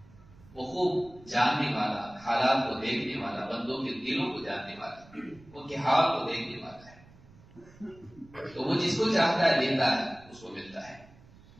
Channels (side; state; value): right; noise; rumble, 24 dB below the sound